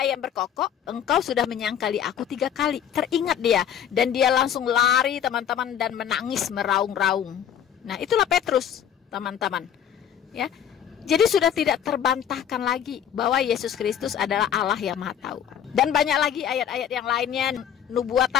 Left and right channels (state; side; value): quieter; right; 9.1 dB